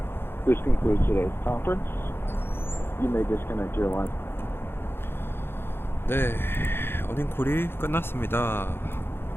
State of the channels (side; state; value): right; late; 0.11 ms